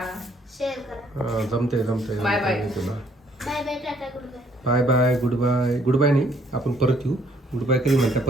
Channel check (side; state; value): both; normal; correlation 0.64